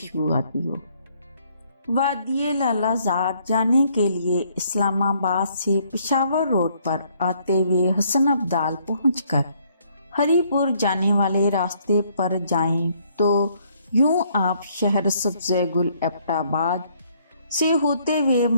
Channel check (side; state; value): both; inverted; correlation -0.67